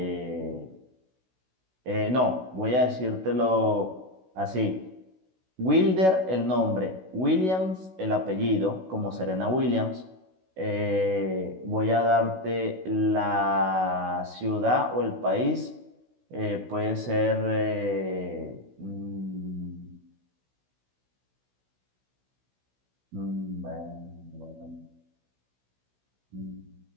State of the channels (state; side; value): late; left; 16 ms